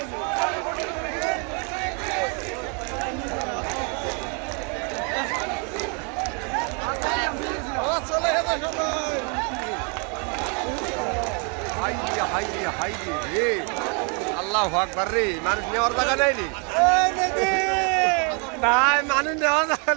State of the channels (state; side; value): quieter; left; 36.5 dB